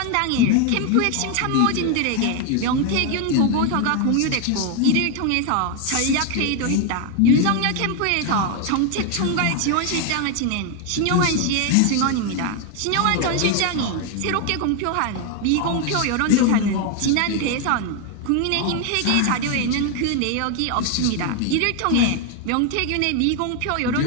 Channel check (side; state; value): both; different; correlation 0.01